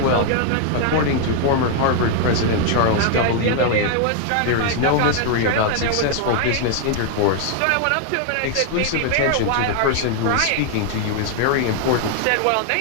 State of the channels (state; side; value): different; both; correlation 0.00